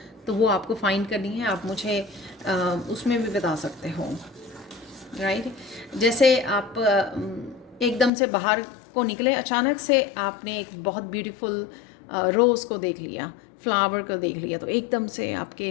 तो वो आपको फाइंड करनी है। आप मुझे उसमें भी बता सकते हो, राइट। जैसे आप एकदम से बाहर को निकले, अचानक से आपने एक बहुत ब्यूटीफुल रोज़ को देख लिया, फ्लावर को देख लिया, तो एकदम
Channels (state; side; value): drops out; right; at 8.1 s